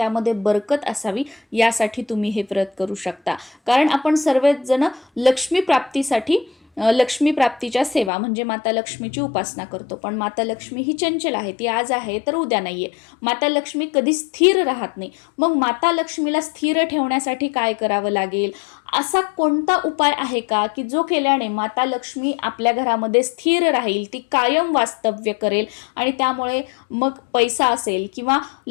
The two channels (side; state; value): right; drops out; at 8.1 s